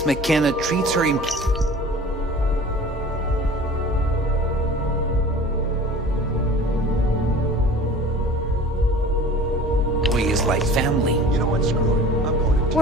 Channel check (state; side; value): normal; both; correlation 0.43